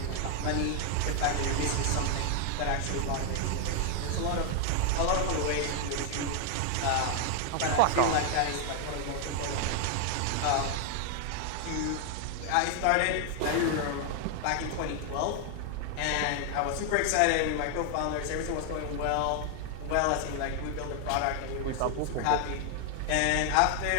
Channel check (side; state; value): both; different; correlation 0.00